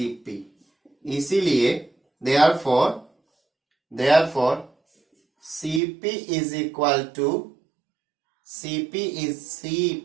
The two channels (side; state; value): left; drops out; at 5.8 s